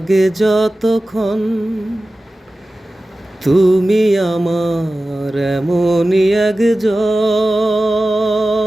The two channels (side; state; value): both; normal; correlation 0.95